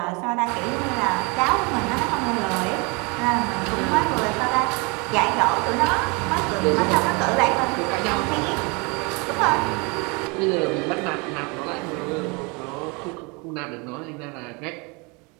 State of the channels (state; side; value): quieter; left; 29.5 dB